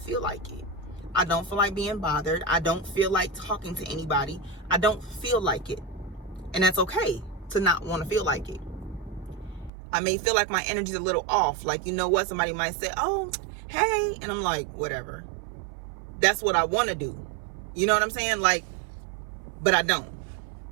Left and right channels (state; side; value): drops out; left; at 9.7 s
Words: like it. I don't feel like being bothered. I don't feel like talking to anybody. I don't feel like it. And that's okay to not want to feel like it. I may feel like my energy's a little off. Like, you know what? Somebody might say, oh, hey. And I'm like, whatever. That's what I want to do. You know what I'm saying? Like, but I don't.